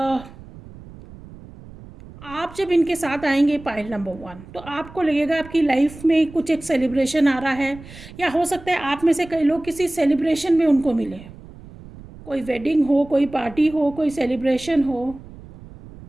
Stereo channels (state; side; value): noise; right; rumble, 18 dB below the sound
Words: आप जब इनके साथ आएंगे पाइल नंबर 1, तो आपको लगेगा आपकी लाइफ में कुछ एक सेलिब्रेशन आ रहा है, या हो सकता है आप में से कई लोग किसी सेलिब्रेशन में उनको मिले। कोई वेडिंग हो, कोई पार्टी हो, कोई सेलिब्रेशन हो,